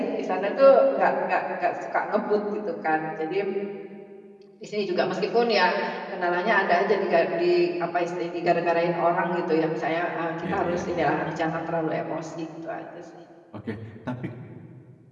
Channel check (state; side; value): identical; both; correlation 1.00